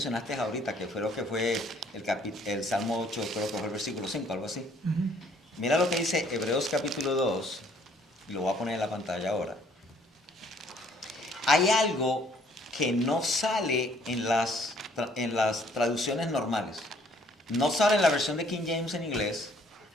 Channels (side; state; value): both; normal; correlation 0.62